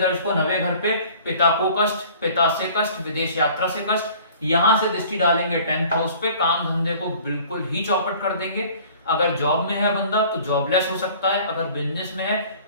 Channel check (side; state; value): both; inverted; correlation -0.49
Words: 9वें घर पे, पिता को कष्ट, पिता से कष्ट, विदेश यात्रा से कष्ट। यहाँ से दृष्टि डालेंगे 10th हाउस पे, काम धंधे को बिल्कुल ही चौपट कर देंगे। अगर जॉब में है बंदा तो जॉबलेस हो सकता है, अगर बिजनेस में है